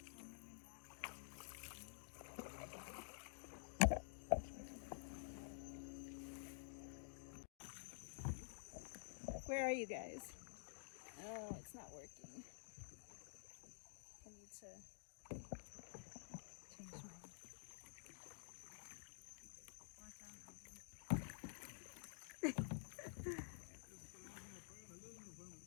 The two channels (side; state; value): right; silent; digital silence